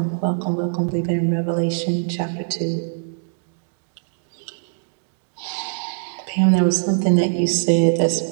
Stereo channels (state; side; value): silent; left; digital silence